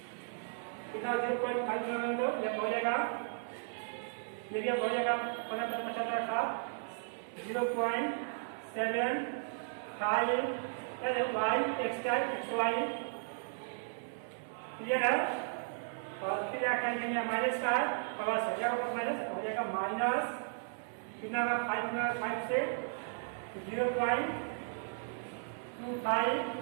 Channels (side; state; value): left; silent; 54 dB below the other